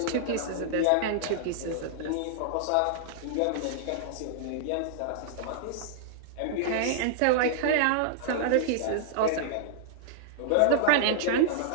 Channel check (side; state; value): both; different; correlation -0.01